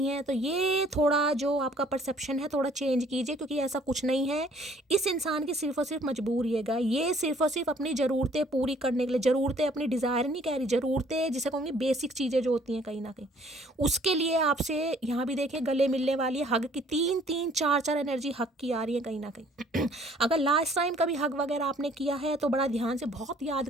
है, तो ये थोड़ा जो आपका परसेप्शन है थोड़ा चेंज कीजिए, क्योंकि ऐसा कुछ नहीं है। इस इंसान की सिर्फ और सिर्फ मजबूरी है, ये सिर्फ और सिर्फ अपनी ज़रूरतें पूरी करने के लिए, ज़रूरतें अपनी डिज़ायर नहीं कह रही, ज़रूरतें जिसे कहूँगी बेसिक चीज़ें जो होती हैं कहीं ना कहीं, उसके लिए आपसे यहाँ भी देखिए गले मिलने वाली है। हग की 3-3, 4-4 एनर्जी हग की आ रही है कहीं ना कहीं। अगर लास्ट टाइम कभी हग वगैरह आपने किया है तो बड़ा ध्यान से बहुत याद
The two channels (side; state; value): both; normal; correlation 0.59